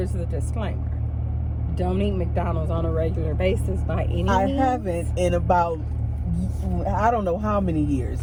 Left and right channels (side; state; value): both; identical; correlation 1.00